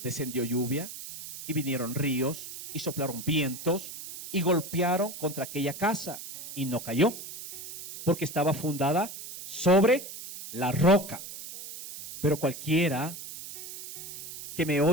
Descendió lluvia y vinieron ríos y soplaron vientos y golpearon contra aquella casa y no cayó, porque estaba fundada sobre la roca. Pero cualquiera que me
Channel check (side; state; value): right; noise; hiss, 11 dB below the sound